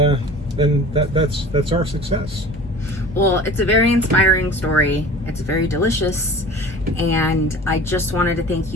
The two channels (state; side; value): normal; both; correlation 0.41